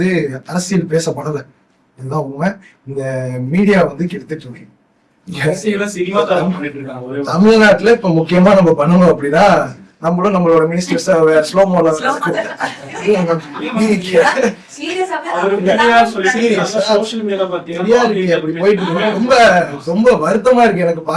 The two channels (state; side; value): identical; both; correlation 1.00